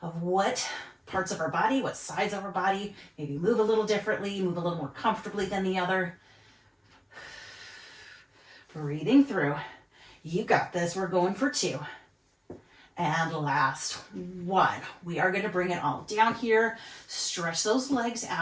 of what parts of our body, what sides of our body maybe move a little differently, move a little more comfortably than the other. Breathing through. You got this. We're going for 2. And last 1. We are going to bring it all down here. Stretch those legs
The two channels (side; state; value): both; identical; correlation 1.00